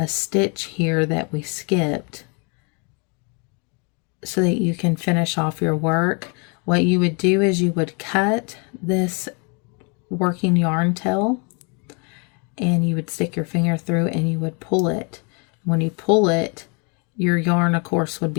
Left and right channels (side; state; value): right; quieter; 34.3 dB